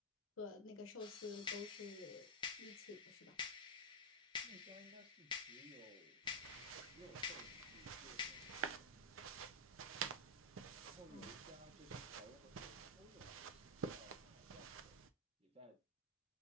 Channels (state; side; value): normal; both; correlation -0.05